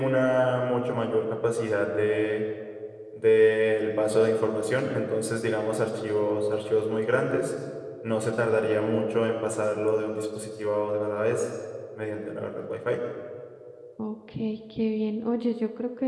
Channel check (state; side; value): identical; both; correlation 1.00